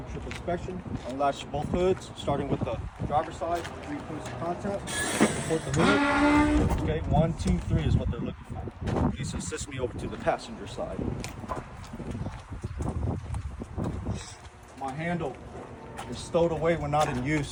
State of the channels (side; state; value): both; identical; correlation 1.00